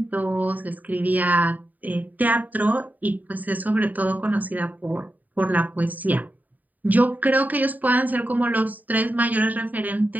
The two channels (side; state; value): left; late; 0.081 ms